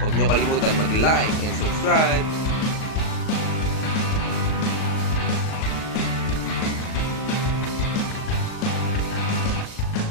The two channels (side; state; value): right; late; 38 ms